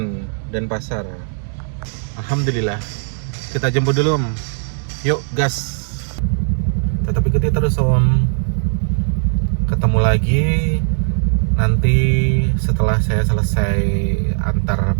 Denpasar. Alhamdulillah. Kita jemput dulu, Om. Yuk, gas. Tetap ikuti terus, Om. Ketemu lagi nanti setelah saya selesai antar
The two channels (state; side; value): silent; left; digital silence